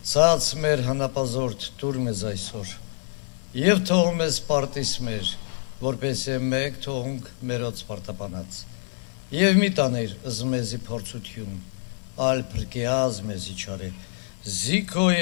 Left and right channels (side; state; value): right; silent; digital silence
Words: ցած մեր հանապազորդ դուր մեզ այսօր, և թող մեզ պարտիս մեր, որպես է մեկ թողունք մերոց պարտապանած, և մի տաներ ըզմեզի փորձություն, ալ պրկեազ մեզի չարե,